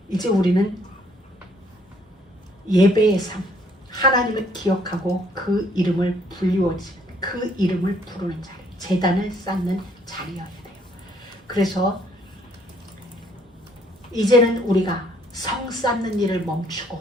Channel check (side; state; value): both; normal; correlation 0.65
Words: 이제 우리는 예배의 삶, 하나님을 기억하고 그 이름을 불리워지는, 그 이름을 부르는 자리, 제단을 쌓는 자리여야 돼요. 그래서 이제는 우리가 성 쌓는 일을